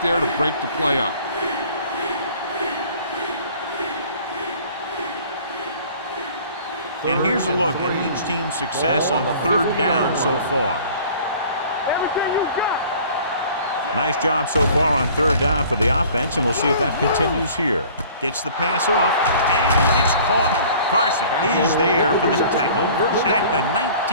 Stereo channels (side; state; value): both; inverted; correlation -0.49